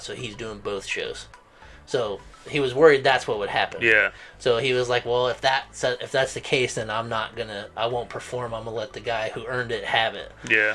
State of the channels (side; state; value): both; identical; correlation 1.00